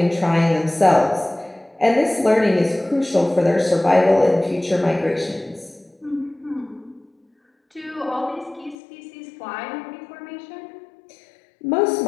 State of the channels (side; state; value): right; drops out; at 8.8 s